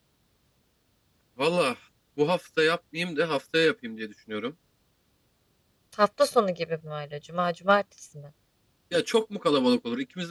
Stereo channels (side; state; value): both; identical; correlation 1.00